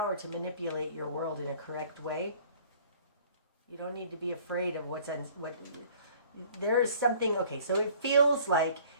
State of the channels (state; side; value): inverted; both; correlation -0.53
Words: to manipulate your world in a correct way. You don't need to be afraid of what there is something. Okay, so it feels like